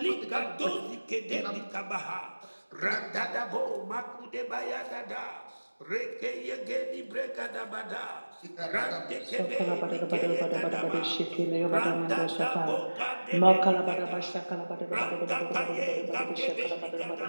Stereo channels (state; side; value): inverted; both; correlation -1.00